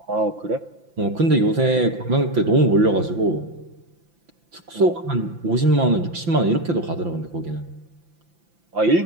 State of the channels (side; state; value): left; late; 5.9 ms